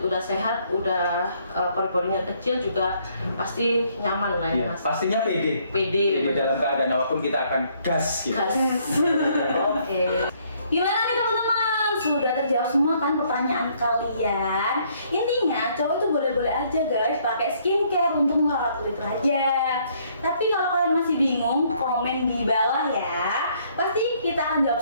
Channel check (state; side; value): inverted; both; correlation -0.66